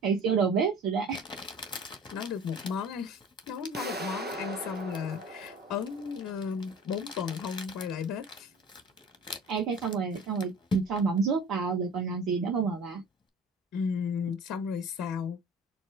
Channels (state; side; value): normal; both; correlation 0.43